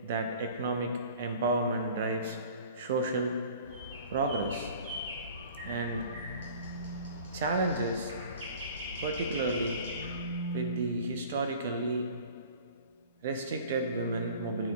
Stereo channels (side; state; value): both; inverted; correlation -0.46